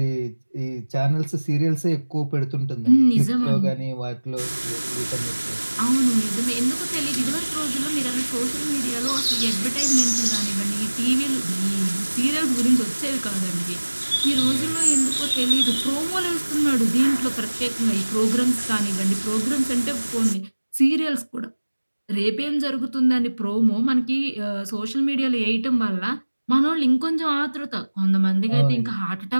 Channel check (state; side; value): inverted; both; correlation -1.00